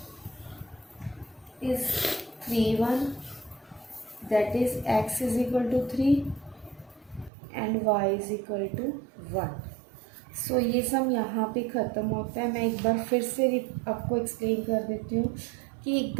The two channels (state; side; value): drops out; left; at 7.3 s